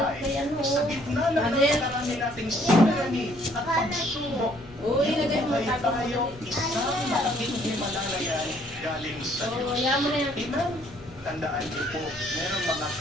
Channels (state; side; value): normal; both; correlation 0.63